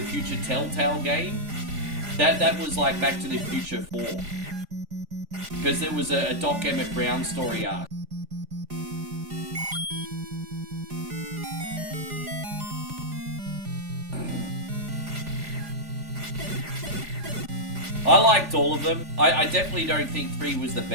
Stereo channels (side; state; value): left; late; 3.4 ms